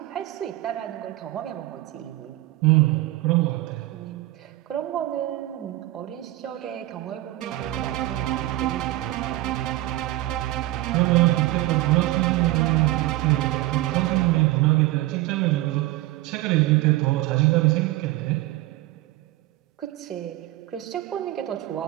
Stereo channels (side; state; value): left; quieter; 17.2 dB